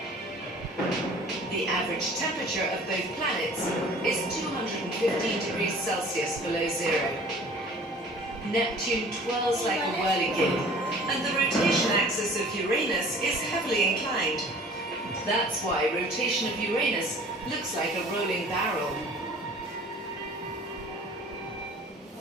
The average temperature of both planets is 215 degrees Celsius below zero. Neptune twirls like a whirligig, and the rotation axis of Uranus is heavily inclined. That's why rotation of Uranus looks like a rolling barrel.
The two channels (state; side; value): normal; both; correlation 0.48